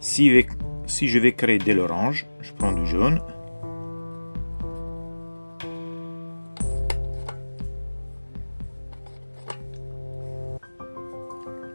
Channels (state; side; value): inverted; both; correlation -1.00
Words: Si je vais créer de l'orange, je prends du jaune.